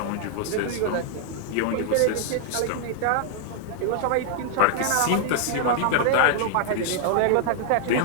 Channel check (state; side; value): different; both; correlation -0.01